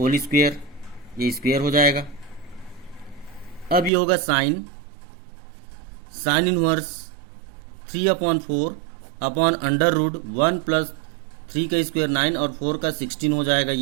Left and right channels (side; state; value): left; drops out; at 3.9 s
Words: स्क्वायर, ये स्क्वायर हो जाएगा। अब ये होगा sine inverse 3/4 upon under root 1 plus 3 का स्क्वायर 9 और 4 का 16 हो जाएगा।